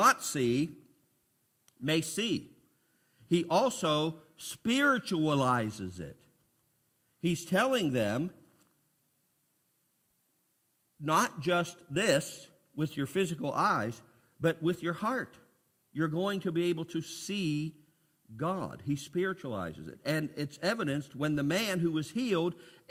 see may see. He also spiritualizes it. He's telling them, not just this with your physical eyes, but with your heart. You're going to be able to see God. He spiritualizes it. And it's evidenced when the man who was healed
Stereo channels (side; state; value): both; identical; correlation 1.00